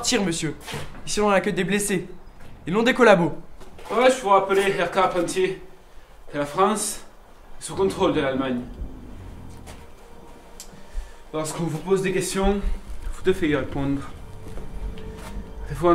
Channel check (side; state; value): both; identical; correlation 1.00